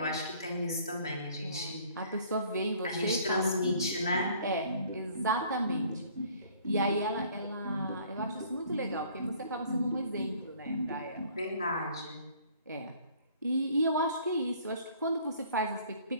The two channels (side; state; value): both; inverted; correlation -0.56